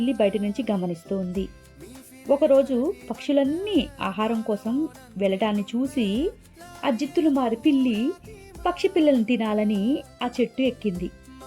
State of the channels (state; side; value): identical; both; correlation 1.00